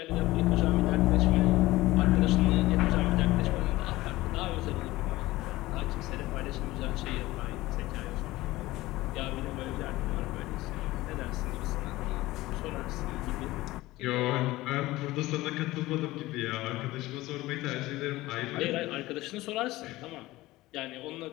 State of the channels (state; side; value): quieter; right; 18.3 dB